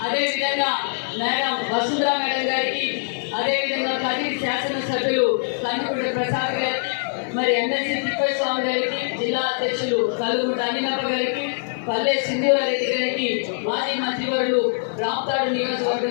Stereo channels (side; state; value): right; silent; digital silence